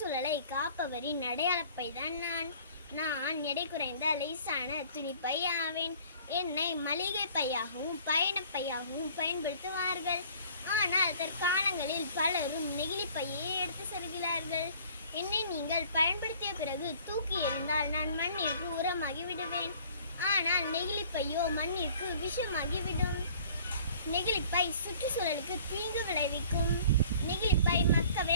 காப்பவரின் அடையாளப்பை தான் நான் எடை குறைந்த லேசான துணிப்பை ஆவேன். என்னை மளிகை பையாகவும் பயணப்பையாகவும் பயன்படுத்துவார்கள். ஆனால் தற்காலங்களில் பலரும் நெகிழி பையை எடுத்து செல்கிறார்கள். என்னை நீங்கள் பயன்படுத்திய பிறகு தூக்கி எறிந்தால் நான் மண்ணிற்கு உரமாகி விடுவேன். ஆனால் நெகிழி பையோ மண்ணிற்கு விஷமாகிவிடும். நெகிழிப்பை சுற்றுச்சூழலுக்கு தீங்கு விளைவிக்கும். நெகிழிப்பை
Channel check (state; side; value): inverted; both; correlation -0.53